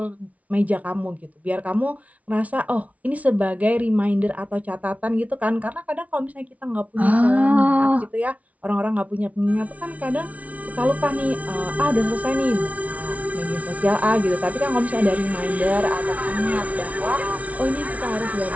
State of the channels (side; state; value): left; late; 0.068 ms